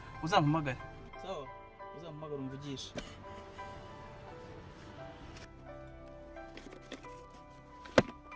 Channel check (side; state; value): both; identical; correlation 1.00